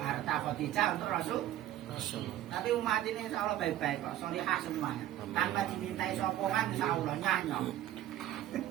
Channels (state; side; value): quieter; left; 13.0 dB